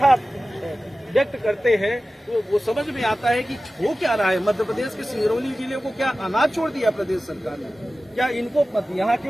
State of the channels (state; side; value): normal; both; correlation 0.95